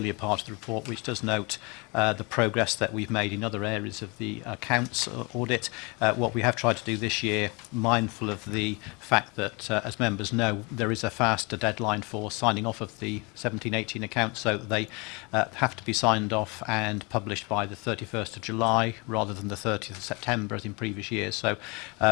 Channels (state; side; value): quieter; right; 28.9 dB